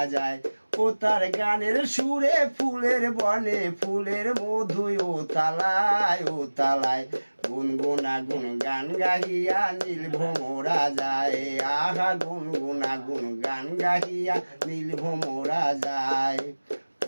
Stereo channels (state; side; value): inverted; both; correlation -1.00